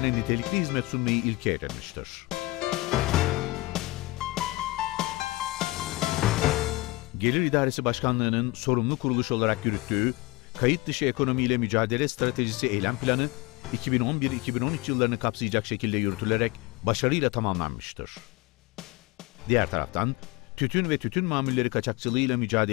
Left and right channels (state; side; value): quieter; right; 21.4 dB